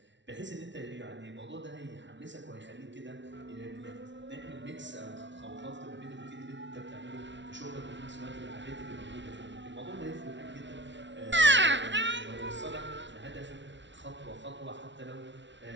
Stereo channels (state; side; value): late; left; 0.53 ms